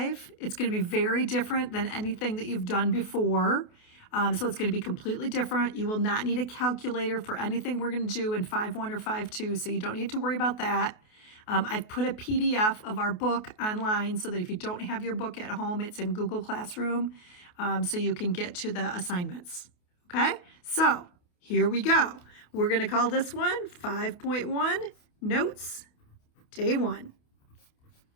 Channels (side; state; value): right; late; 28 ms